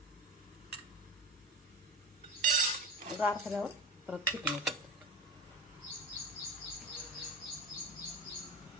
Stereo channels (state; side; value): normal; both; correlation 0.26